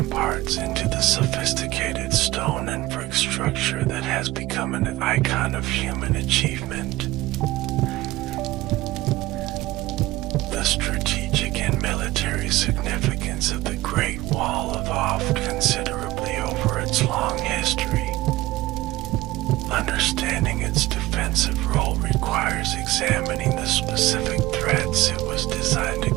into the sophisticated stone and brick structure that has become an icon of human achievement. The strategic and military significance of the Great Wall evolved considerably over its long history. Understanding its defensive role requires examining the specific threats it was designed to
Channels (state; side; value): quieter; left; 17.9 dB